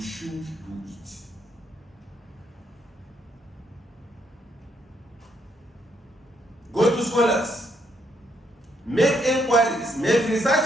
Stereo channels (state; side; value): normal; both; correlation 0.74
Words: do it. Go to scholars, make inquiries, make